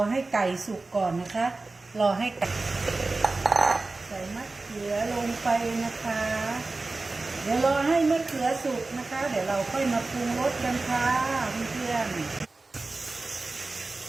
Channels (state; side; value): quieter; left; 3.4 dB